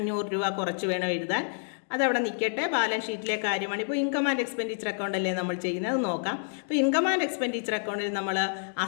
രൂപ കുറച്ച് വേണം എഴുതാൻ. അതവിടെ നിൽക്കട്ടെ. ബാലൻസ് ഷീറ്റിലെ കാര്യമാണ്. ഇപ്പോൾ ഇൻകം ആൻഡ് എക്സ്പെൻഡിച്ചർ അക്കൗണ്ട് അല്ലേ നമ്മൾ ചെയ്യുന്നത്, നോക്കാം. അപ്പോൾ ഇൻകം ആൻഡ് എക്സ്പെൻഡിച്ചർ അക്കൗണ്ടിൽ നമ്മൾ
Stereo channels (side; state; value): right; silent; digital silence